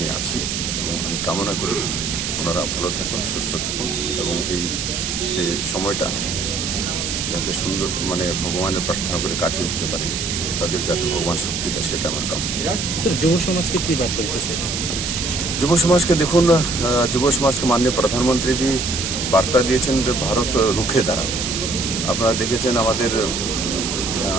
আছি এবং আমি কামনা করি ওনারা ভালো থাকুন, সুস্থ থাকুন এবং এই যে সময়টা যাতে সুন্দর ভগবানের প্রার্থনা করে কাটিয়ে উঠতে পারে, তাদের যাতে ভগবান শক্তি দেয়, সেটা আমার কামনা। যুব সমাজকে কি বার্তা দিতেছে? যুব সমাজকে দেখুন, যুব সমাজকে মাননীয় প্রধানমন্ত্রীজি বার্তা দিয়েছেন যে ভারত রুখে দাঁড়াবে। আপনারা দেখেছেন আমাদের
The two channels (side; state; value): right; noise; hiss, 2 dB below the sound